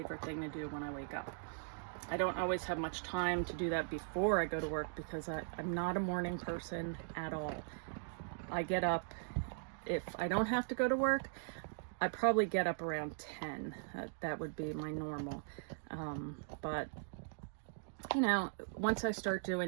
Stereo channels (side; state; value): left; silent; digital silence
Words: thing to do when I wake up. I don't always have much time to do that before I go to work because I'm not a morning person at all. I get up, if I don't have to go to work, I probably get up around 10. That would be my normal. But you know, once I start